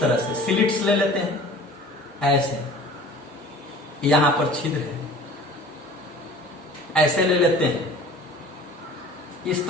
तरह से स्लिट्स ले लेते हैं, ऐसे यहां पर छिद्र है, ऐसे ले लेते हैं। इस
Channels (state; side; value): normal; both; correlation 0.45